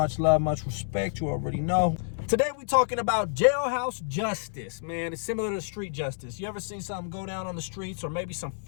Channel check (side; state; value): right; silent; digital silence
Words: love, much respect. You already know. Today we're talking about jailhouse justice, man. It's similar to street justice. You ever seen something go down on the streets, or maybe some